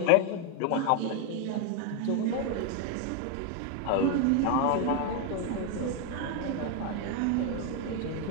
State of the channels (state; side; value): different; both; correlation 0.01